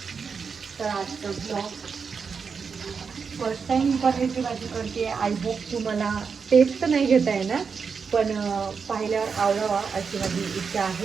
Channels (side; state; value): left; quieter; 5.7 dB